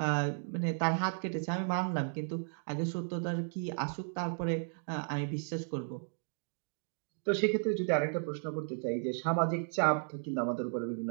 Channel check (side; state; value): left; silent; digital silence